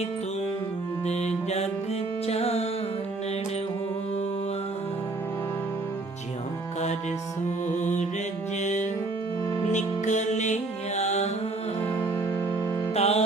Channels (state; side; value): quieter; left; 3.2 dB